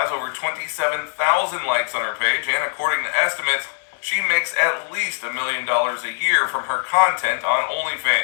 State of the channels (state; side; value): silent; right; 64 dB below the other